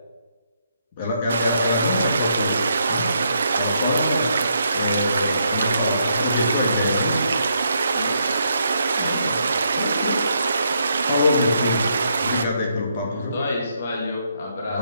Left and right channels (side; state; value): both; inverted; correlation -0.76